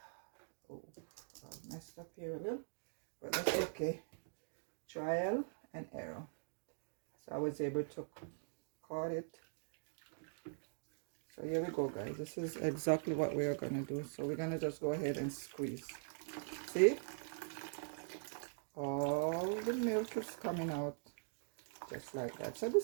I messed up here a little, but that's okay. Trial and error. So I was able to cut it. So here we go, guys. This is exactly what we are gonna do. So we're gonna just go ahead and squeeze. See, all the milk is coming out just like that. So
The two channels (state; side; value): silent; left; digital silence